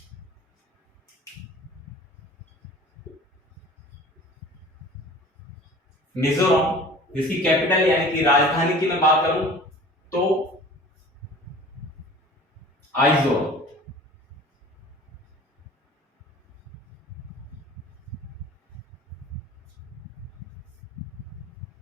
मिजोरम जिसकी कैपिटल यानी कि राजधानी की मैं बात करूं तो आइजोल।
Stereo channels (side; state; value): both; normal; correlation 0.44